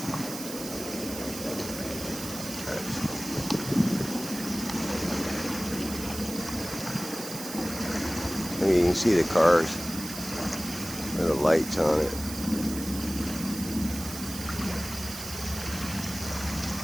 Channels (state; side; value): noise; right; hiss, 9 dB below the sound